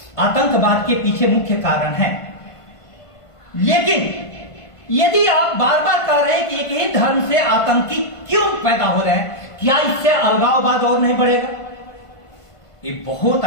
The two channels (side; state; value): right; late; 1.5 ms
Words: आतंकवाद के पीछे मुख्य कारण है, लेकिन यदि आप बार बार कह रहे हैं कि एक ही धर्म से आतंकी क्यों पैदा हो रहे हैं, क्या इससे अलगाववाद और नहीं बढ़ेगा? ये बहुत